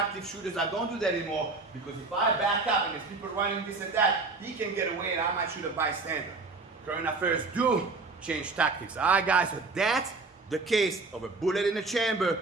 shooters, I don't do that anymore. Because if I back up and there's people running this and that, he can get away and I might shoot a bystander. Current affairs do change tactics. All right, guys, so that's the case of a bullet in the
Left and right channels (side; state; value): left; quieter; 3.8 dB